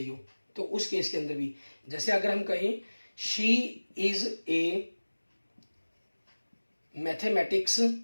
हो, तो उस केस के अंदर भी, जैसे अगर हम कहें she is a mathematics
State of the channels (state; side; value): inverted; both; correlation -1.00